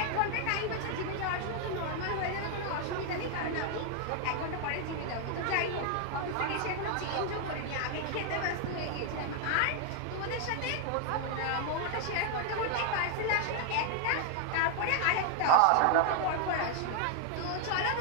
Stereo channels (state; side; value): different; both; correlation 0.00